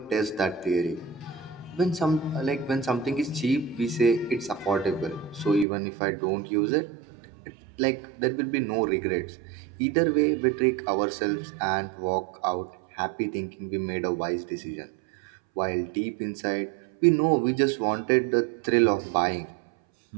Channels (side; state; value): left; drops out; at 5.7 s